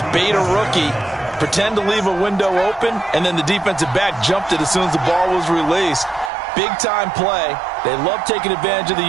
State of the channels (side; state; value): left; drops out; at 6.3 s